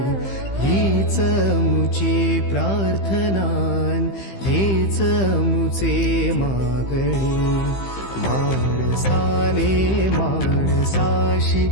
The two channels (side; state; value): right; late; 15 ms